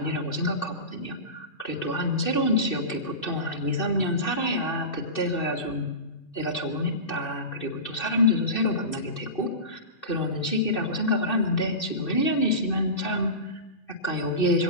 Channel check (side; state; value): right; late; 2.6 ms